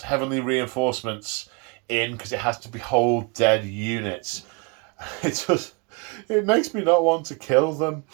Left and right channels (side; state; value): left; quieter; 31.1 dB